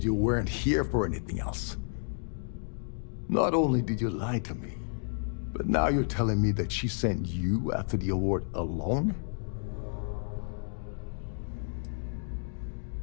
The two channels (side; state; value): right; silent; 57 dB below the other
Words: you weren't here for anything else. Not only did you lie to me, but now you're telling me that she sent you after the award alone?